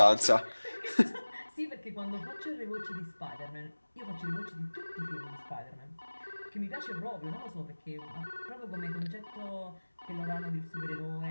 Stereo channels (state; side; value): inverted; both; correlation -1.00